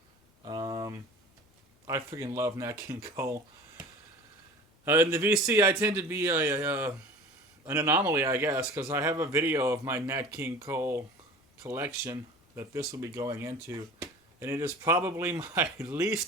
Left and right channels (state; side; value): normal; both; correlation 0.40